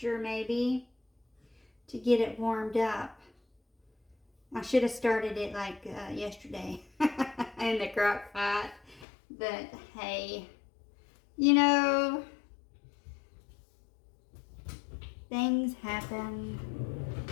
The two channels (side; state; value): right; drops out; at 9.1 s